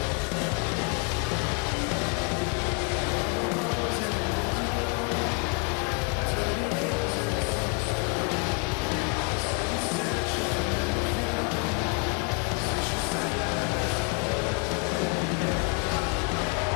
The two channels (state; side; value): quieter; right; 35.1 dB